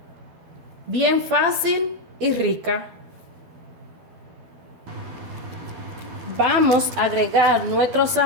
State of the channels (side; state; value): left; late; 12 ms